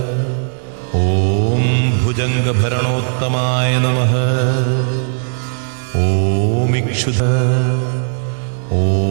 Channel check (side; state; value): left; silent; digital silence